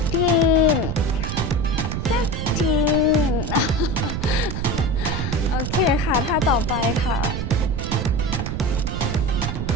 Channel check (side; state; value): right; noise; rumble, 3 dB below the sound